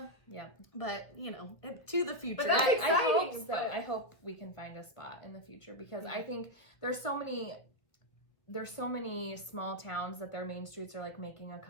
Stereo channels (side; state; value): right; late; 1.5 ms